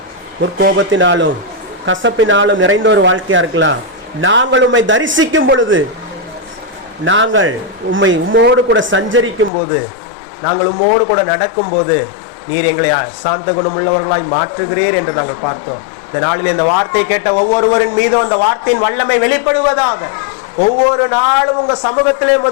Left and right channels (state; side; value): drops out; right; at 9.5 s